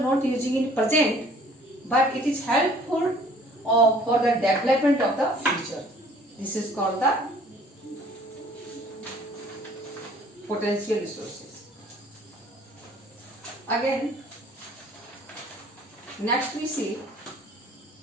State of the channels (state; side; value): normal; both; correlation 0.55